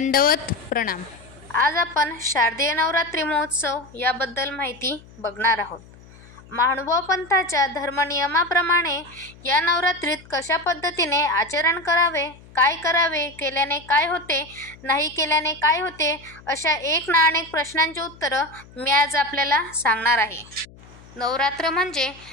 प्रणाम। आज आपण शारदीय नवरात्री महोत्सव याबद्दल माहिती बघणार आहोत। महानुभाव पंथाच्या धर्मनियमाप्रमाणे या नवरात्रीत कशा पद्धतीने आचरण करावे, काय करावे, केल्याने काय होते, नाही केल्याने काय होते, अशा एक ना अनेक प्रश्नांची उत्तरं मी आज आपल्याला सांगणार आहे। नवरात्र म्हणजे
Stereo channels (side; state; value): left; noise; hum, 22 dB below the sound